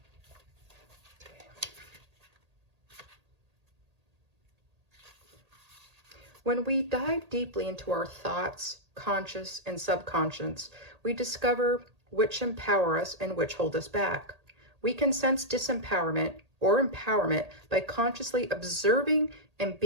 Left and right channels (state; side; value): late; left; 1.8 ms